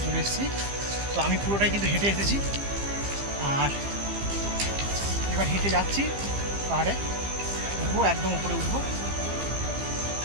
চলে এসেছি। তো আমি পুরোটাই কিন্তু হেঁটে এসেছি, আর এবার হেঁটে যাচ্ছি পাহাড়ে, উঠবো, একদম উপরে উঠবো।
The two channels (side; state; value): left; late; 15 ms